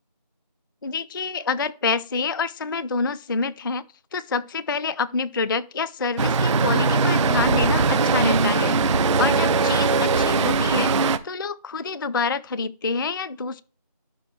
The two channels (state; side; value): inverted; both; correlation -0.32